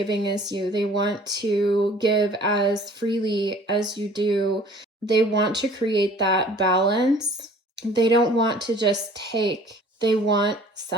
as you. They want to give as freely as you do. They want to create that balance. They don't want to just take, they want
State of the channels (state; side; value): normal; both; correlation 0.51